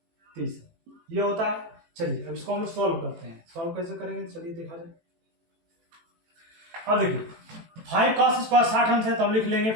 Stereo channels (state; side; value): late; left; 18 ms